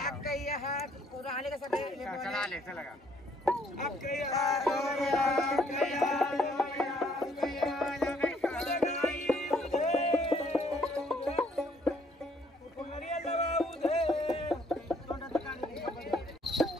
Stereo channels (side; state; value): both; normal; correlation 0.65